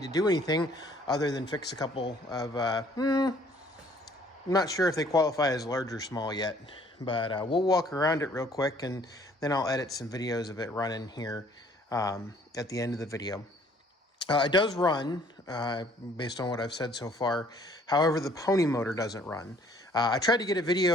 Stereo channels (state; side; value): normal; both; correlation 0.59